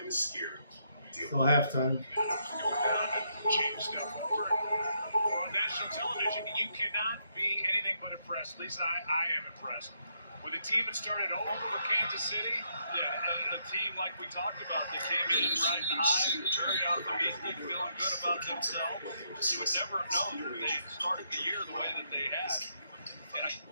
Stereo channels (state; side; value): inverted; both; correlation -0.76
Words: is scary. Still halftime. Change stuff over on national television. You cannot be anything but impressed. At least I am impressed with a team that started over Kansas City. Yeah, a team like we talked about that came in riding high, very optimistic, feeling good about themselves. You would never have known that they started the year the way that they had. And